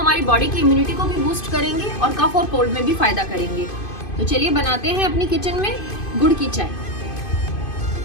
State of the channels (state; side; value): late; right; 2.5 ms